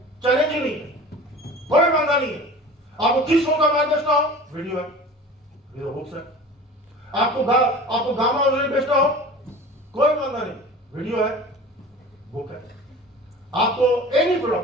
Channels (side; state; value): both; normal; correlation 0.39